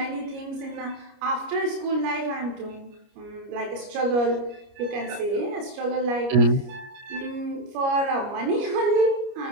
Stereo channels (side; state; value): left; late; 29 ms